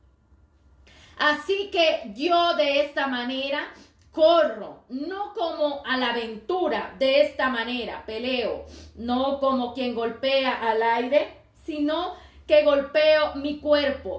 Así que yo de esta manera corro, no como a la aventura, de esta manera peleo, no como quien golpea al aire, sino que golpeo mi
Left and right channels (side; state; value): both; identical; correlation 1.00